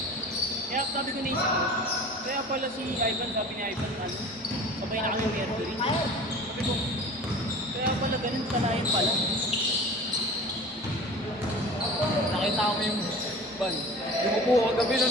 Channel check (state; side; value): noise; right; rumble, 28 dB below the sound